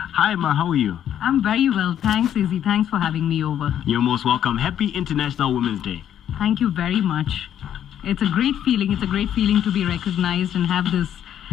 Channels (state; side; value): quieter; right; 10.2 dB